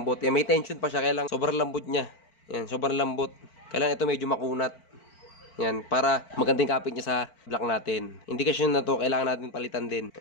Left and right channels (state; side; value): late; right; 4.5 ms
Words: Ayan, may tension pa siya. Kaya lang sobrang lambot niya. Ayan, sobrang lambot. Kaya lang ito medyo makunat. Ayan, para magandang kapit niya sa block natin. Indikasyon na to, kailangan natin palitan din.